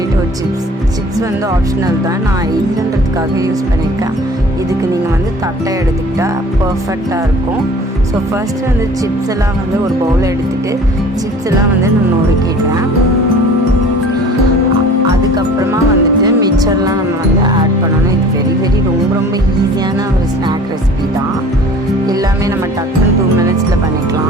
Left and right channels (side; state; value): both; normal; correlation 0.46